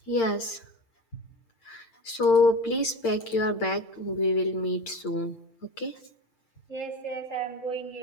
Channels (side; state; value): right; late; 8.8 ms